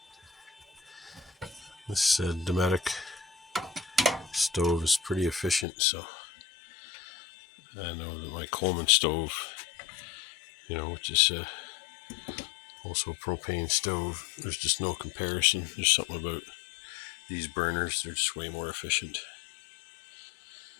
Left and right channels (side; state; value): right; drops out; at 5.7 s